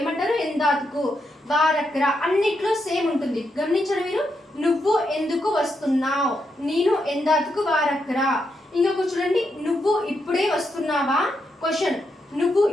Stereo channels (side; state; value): both; normal; correlation 0.82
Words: ఎందాతుకు. వారక్కర. అన్నిట్లో సేమ్ ఉంటుంది. గమనించండి మీరు. నువ్వు ఎందుకు వస్తున్నావు, నేను ఎందాతుకు వారక్కర. ఇంకొక చూడండి, నువ్వు ఇప్పుడే వస్తున్నావా. క్వశ్చన్, నువ్వు